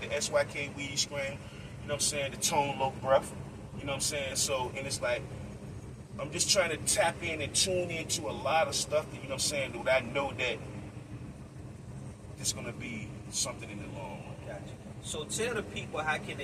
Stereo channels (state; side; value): identical; both; correlation 1.00